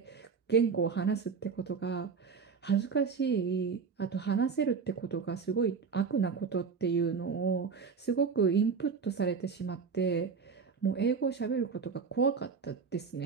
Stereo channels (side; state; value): left; quieter; 5.6 dB